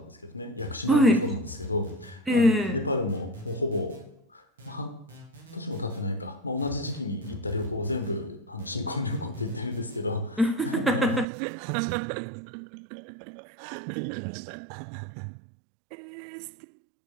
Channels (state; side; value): drops out; left; at 11.2 s